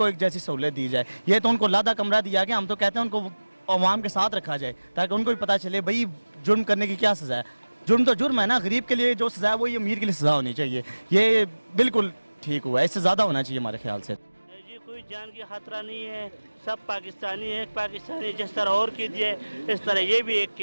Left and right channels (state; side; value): inverted; both; correlation -1.00